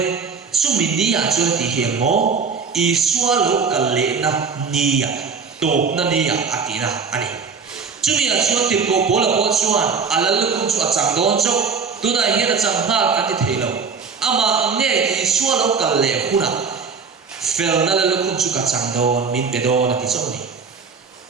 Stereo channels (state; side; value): quieter; left; 5.3 dB